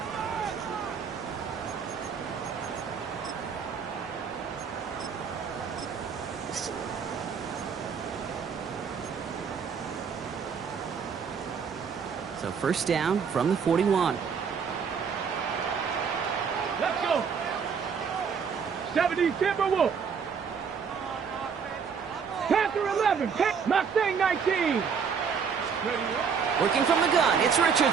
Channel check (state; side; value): quieter; left; 6.4 dB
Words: So 1st down from the 41. Let's go. 70 Timberwolves. Panther 11. Mustang 19. Working from the gun, it's